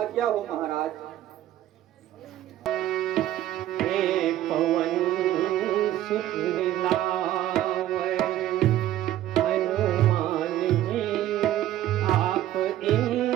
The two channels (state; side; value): quieter; left; 13.1 dB